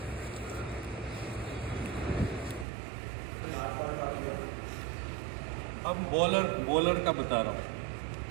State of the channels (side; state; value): left; drops out; at 2.7 s